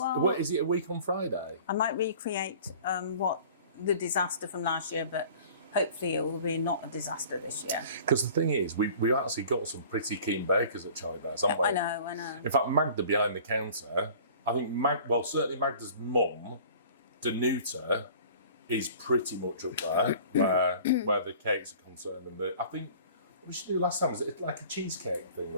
well, what is it a week on Friday? I might recreate what the disaster from last year, but hopefully it will be not a disaster this year. Because the thing is, we've actually got some pretty keen bakers at Charlie Bears, haven't we? I know. In fact, Magda behind the counter, I think certainly Magda's mum, Danuta, is pretty much up there where the cakes are concerned. And I think what we should do last time was it like a cheesecake thing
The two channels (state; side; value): inverted; both; correlation -0.46